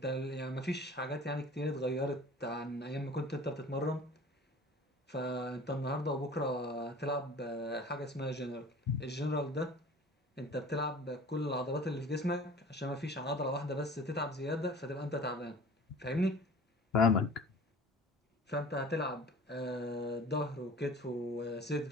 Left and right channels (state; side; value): normal; both; correlation 0.43